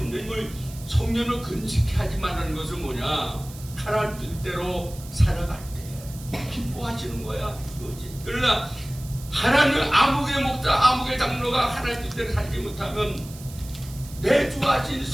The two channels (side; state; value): right; noise; hiss, 18 dB below the sound